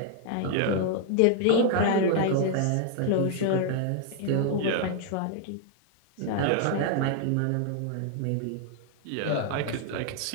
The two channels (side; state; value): both; different; correlation 0.00